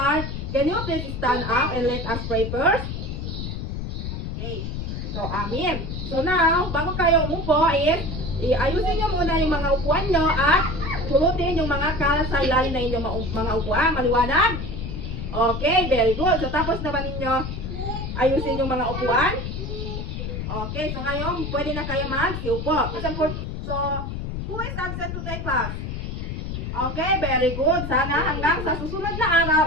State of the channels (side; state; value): left; noise; rumble, 5 dB below the sound